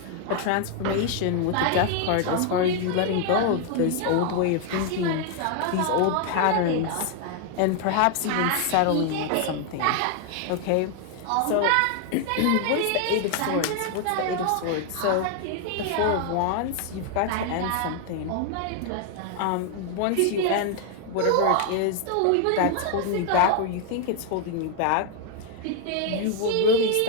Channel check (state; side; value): different; both; correlation 0.00